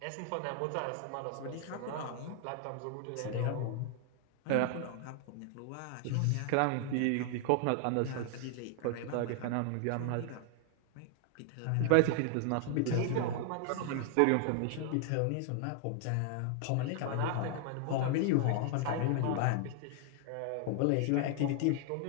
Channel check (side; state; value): both; different; correlation 0.00